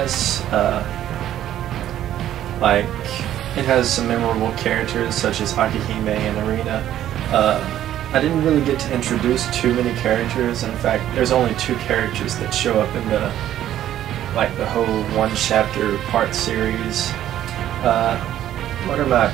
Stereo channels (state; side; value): quieter; left; 12.0 dB